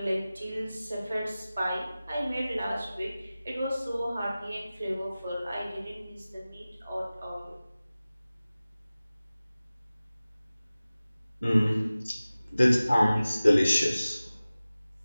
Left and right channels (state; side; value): inverted; both; correlation -0.97